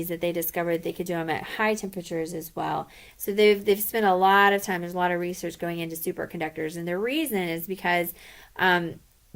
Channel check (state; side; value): identical; both; correlation 1.00